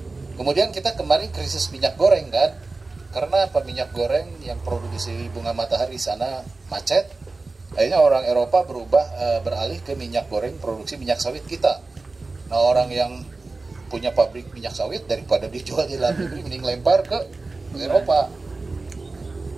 Kemudian kita kemarin krisis minyak goreng kan, karena apa? Minyak goreng yang produksi bunga matahari sana macet. Akhirnya orang Eropa beralih ke minyak goreng produksi minyak sawit kita. Nah, orang yang punya pabrik minyak sawit daripada dijual di dalam negeri, mending lempar ke Eropa,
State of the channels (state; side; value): quieter; left; 3.6 dB